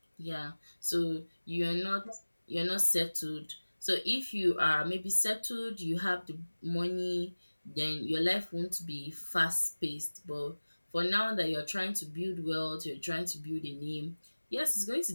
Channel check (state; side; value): inverted; both; correlation -1.00